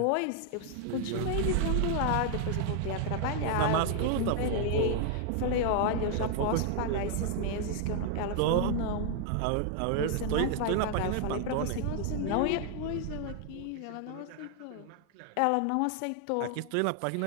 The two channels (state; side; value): different; both; correlation 0.00